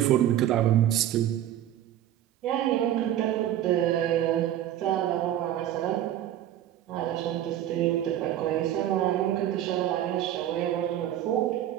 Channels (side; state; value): left; quieter; 11.9 dB